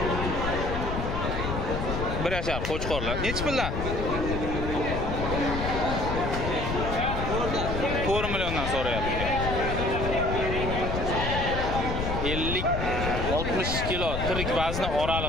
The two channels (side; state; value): left; noise; rumble, 3 dB below the sound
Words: Bir yashar qo'chqorlar. Necha puldan? 4 milliondan so'rayapti. 50 60 kilo tirik vazni